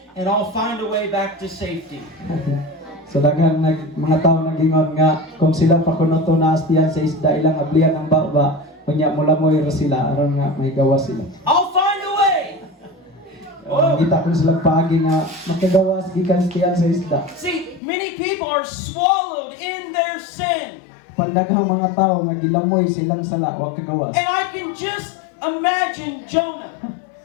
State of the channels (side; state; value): right; drops out; at 17.8 s